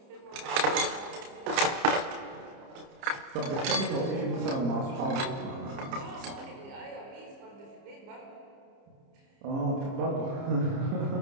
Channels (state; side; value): late; left; 30 ms